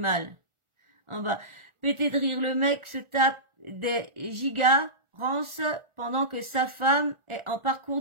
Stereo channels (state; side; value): late; left; 1.4 ms